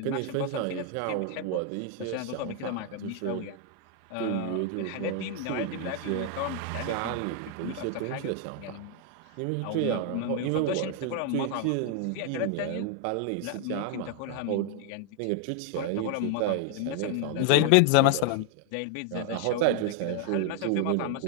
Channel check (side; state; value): both; different; correlation 0.00